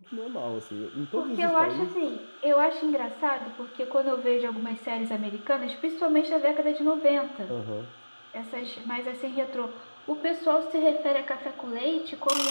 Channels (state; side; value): inverted; both; correlation -1.00